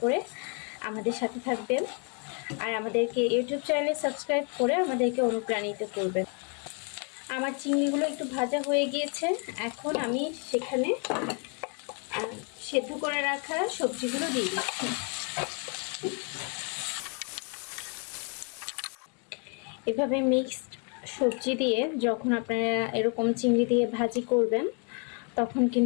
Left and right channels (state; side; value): quieter; right; 38.1 dB